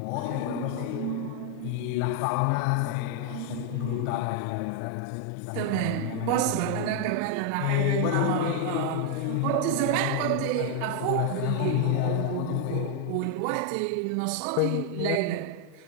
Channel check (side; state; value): both; different; correlation 0.00